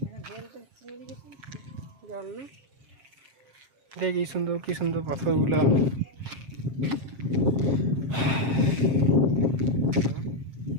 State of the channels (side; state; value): left; late; 7.5 ms